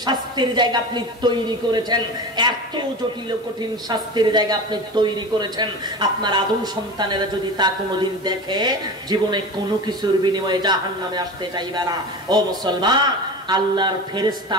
শাস্তির জায়গা আপনি তৈরি করেছেন, এত জটিল ও কঠিন শাস্তির জায়গা আপনি তৈরি করেছেন, আপনার আদম সন্তানেরা যদি তা কোনোদিন দেখে জীবনে কোনো কিছুর বিনিময়ে জাহান্নামে আসতে চাইবে না। ও মুসলমান, আল্লাহর ফেরেশতা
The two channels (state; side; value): normal; both; correlation 0.30